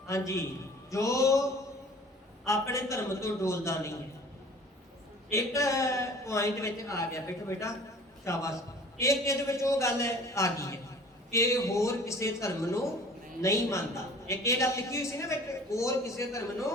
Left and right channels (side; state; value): both; normal; correlation 0.47